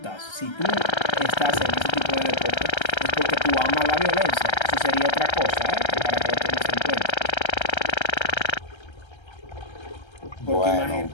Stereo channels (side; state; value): right; late; 1.3 ms